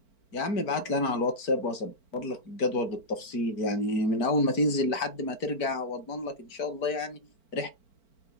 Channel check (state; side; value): late; right; 4.4 ms